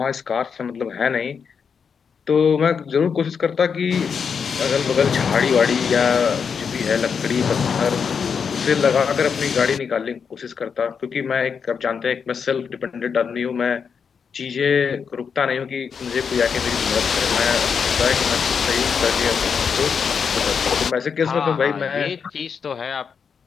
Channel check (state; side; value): quieter; right; 6.4 dB